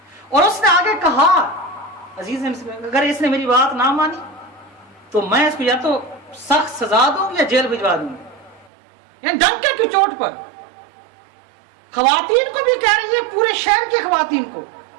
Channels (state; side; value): drops out; left; at 8.7 s